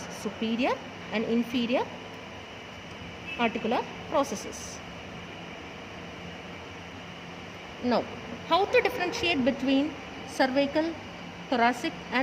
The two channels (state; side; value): identical; both; correlation 1.00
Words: Superior and inferior articular processes. Now, how to differentiate between cervical, thoracic